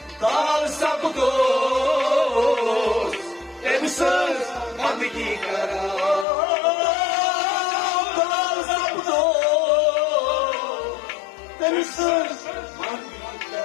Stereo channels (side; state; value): right; drops out; at 6.2 s